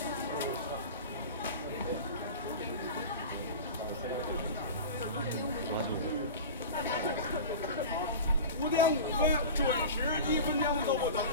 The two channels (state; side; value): inverted; both; correlation -0.32